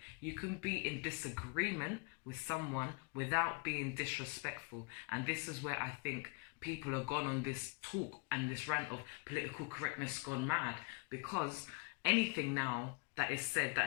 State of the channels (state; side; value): quieter; right; 31.4 dB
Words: You can be in disagreement with someone without being disrespectful. And this is where I think people are gone on this talk and this rant of political correctness gone mad, because anything now that is said